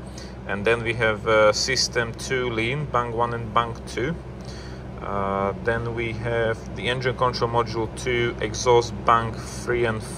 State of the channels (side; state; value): both; identical; correlation 1.00